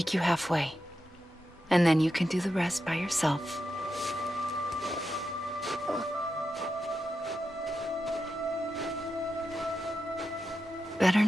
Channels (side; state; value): both; normal; correlation 0.88